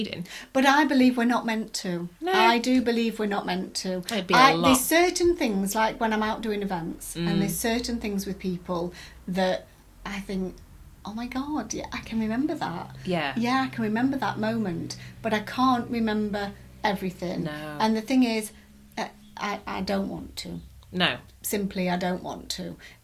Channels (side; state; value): both; identical; correlation 1.00